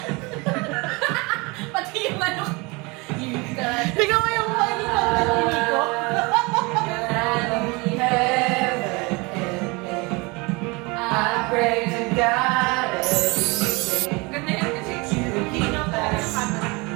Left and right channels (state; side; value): quieter; left; 26.6 dB